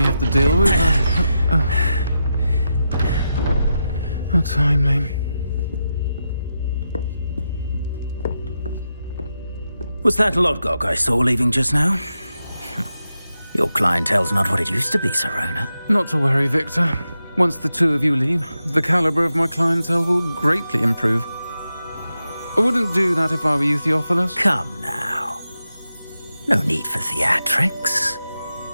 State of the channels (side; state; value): both; inverted; correlation -0.88